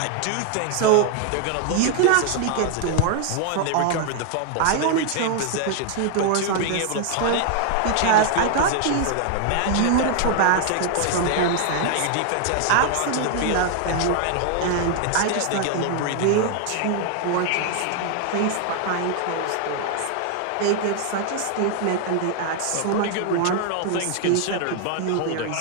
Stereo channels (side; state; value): both; different; correlation 0.00